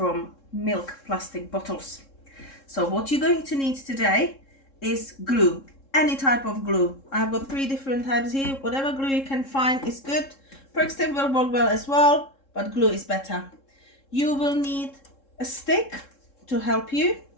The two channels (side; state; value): right; late; 3.7 ms